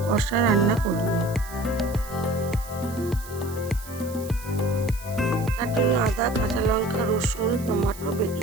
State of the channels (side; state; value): right; noise; hiss, 17 dB below the sound